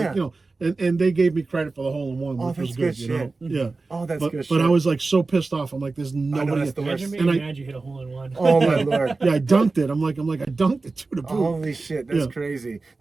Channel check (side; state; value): left; quieter; 3.7 dB